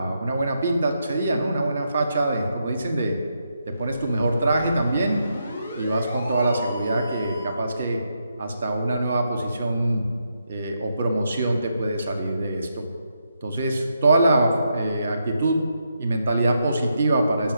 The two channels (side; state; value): both; inverted; correlation -0.82